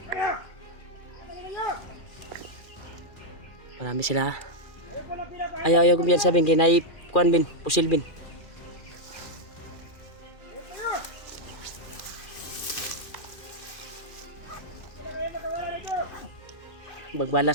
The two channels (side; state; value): right; late; 2.4 ms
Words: Marami sila. Ayaw ko biyan sabihin kay kuan bin, pusil bin.